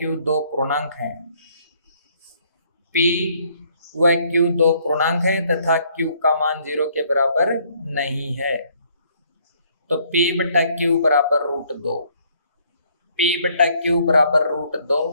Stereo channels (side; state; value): both; inverted; correlation -0.65